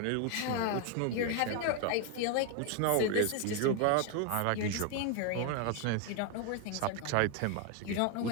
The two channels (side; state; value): both; different; correlation 0.01